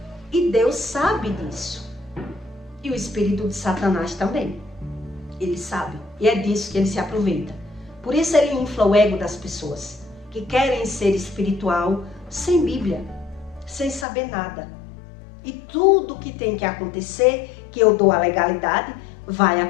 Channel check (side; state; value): right; drops out; at 14.1 s